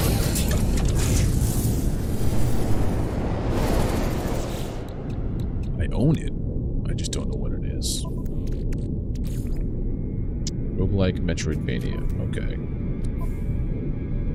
I own it. I just don't know what it is. Roguelike Metroidvania. Okay.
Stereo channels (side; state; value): both; identical; correlation 1.00